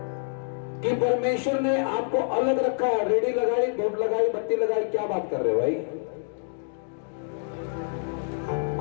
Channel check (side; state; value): right; silent; digital silence